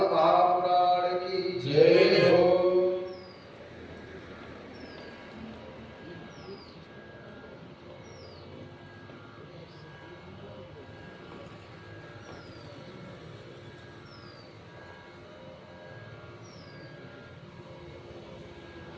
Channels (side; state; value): both; identical; correlation 1.00